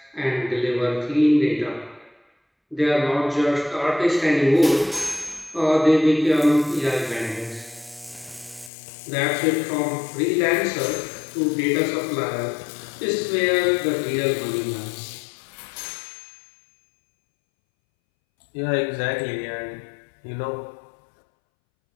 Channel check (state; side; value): drops out; right; at 8.7 s